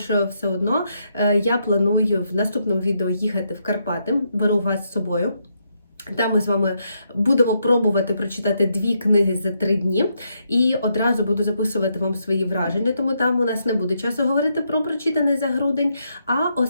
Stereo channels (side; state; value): both; inverted; correlation -0.79